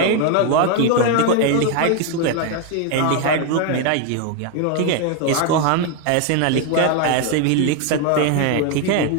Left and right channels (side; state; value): both; different; correlation 0.01